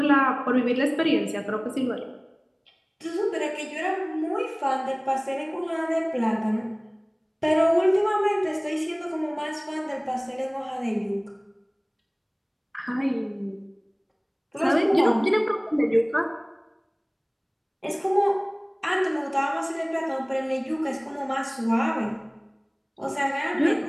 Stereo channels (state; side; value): identical; both; correlation 1.00